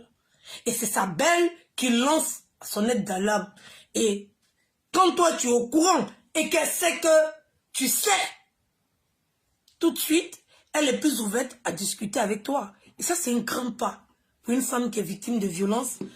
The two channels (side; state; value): both; identical; correlation 1.00